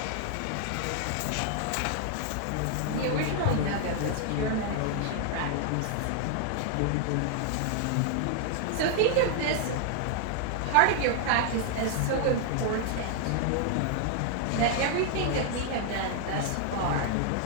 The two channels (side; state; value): both; different; correlation 0.00